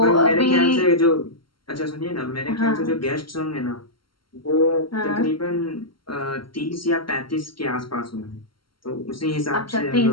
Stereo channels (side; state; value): right; late; 0.73 ms